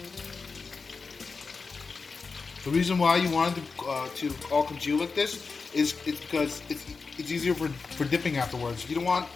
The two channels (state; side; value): quieter; right; 4.6 dB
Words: The reason why you wanted to all congeal like this is because it's easier for dipping afterwards. You don't want